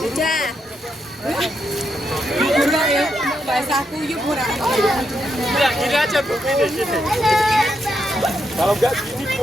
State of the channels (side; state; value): both; normal; correlation 0.81